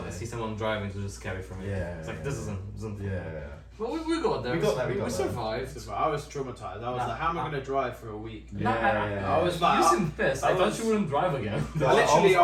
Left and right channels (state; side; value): identical; both; correlation 1.00